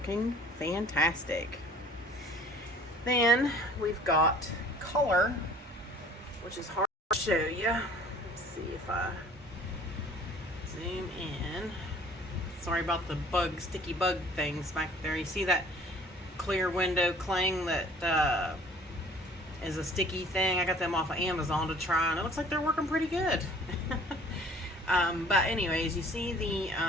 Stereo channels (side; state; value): both; normal; correlation 0.52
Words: fantastic. Then we've got color, which is hard to show you. Let's see if I zoom in. Sorry about the sticky bug things back there. You see that clear window cling that is a sticky thing? I got them off of Amazon to try, and it looks like they're working pretty good. But anyways, you see the